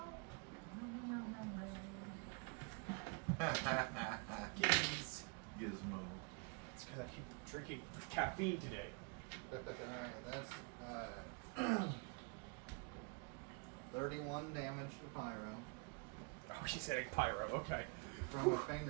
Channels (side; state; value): left; quieter; 33.6 dB